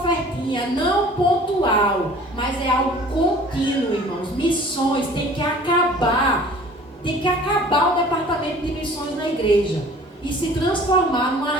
não pontual, mas é algo contínuo, irmãos. Missões tem que acabar o departamento de missões na igreja e se transformar numa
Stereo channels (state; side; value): normal; both; correlation 0.48